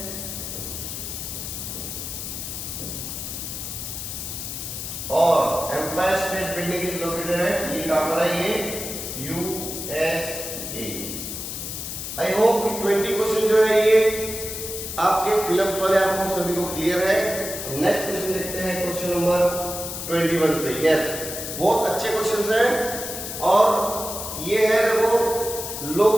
और empire state building is located है, ये कहां पर है? ये यूएसए। आई होप कि 20 क्वेश्चन जो है ये आपके फिल्म्स वाले आपको सभी को क्लियर है। नेक्स्ट क्वेश्चन देखते हैं, क्वेश्चन नंबर 21 से। यस, बहुत अच्छे क्वेश्चंस हैं और ये है देखो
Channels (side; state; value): left; noise; hiss, 6 dB below the sound